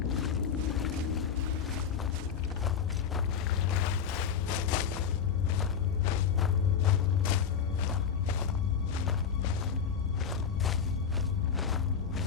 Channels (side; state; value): right; quieter; 7.1 dB